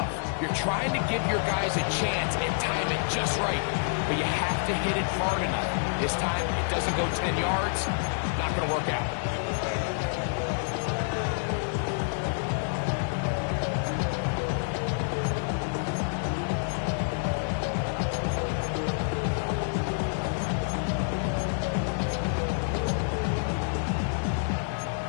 You're trying to give your guys a chance and time it just right, but you have to hit it hard enough. This time, it doesn't go 10 yards. Not going to work out.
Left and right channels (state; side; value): silent; right; digital silence